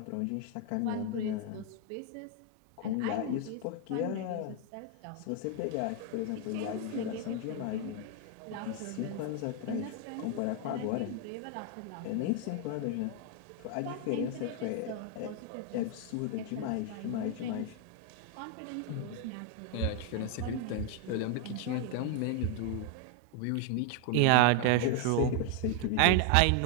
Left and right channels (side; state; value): both; different; correlation 0.01